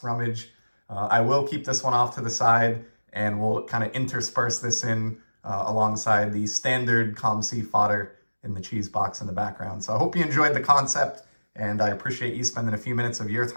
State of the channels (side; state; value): both; inverted; correlation -1.00